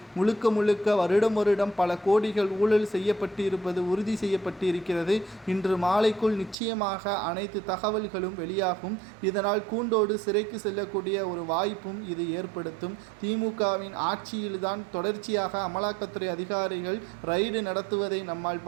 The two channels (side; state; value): left; drops out; at 6.6 s